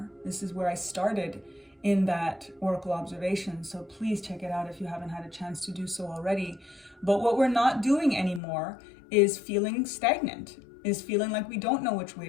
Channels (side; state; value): right; drops out; at 8.4 s